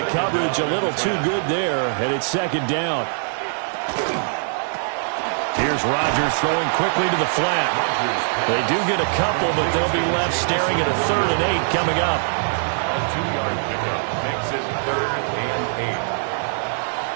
coverage a little too good there, and it's 2nd down. Here's Rodgers throwing quickly to the flat. They do get a couple, but they'll be left staring at a 3rd and 8 coming up. A 2-yard pickup makes it 3rd and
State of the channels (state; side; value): silent; left; 64 dB below the other